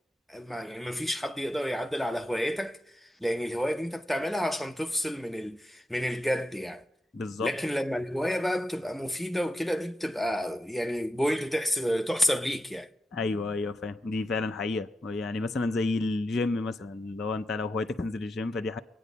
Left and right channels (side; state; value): both; normal; correlation 0.87